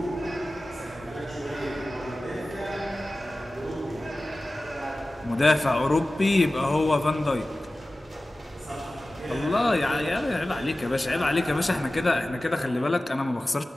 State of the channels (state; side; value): normal; both; correlation 0.96